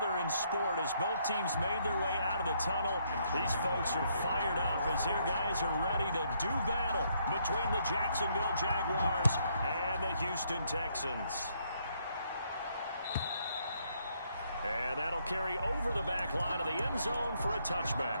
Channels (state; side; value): inverted; both; correlation -0.72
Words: in sport as both teams made their way out of the tunnel. These folks are fired up as their guys are ready to do battle between the Jacksonville Jaguars and the Houston Texans. And that'll carry over the back line of the end zone for a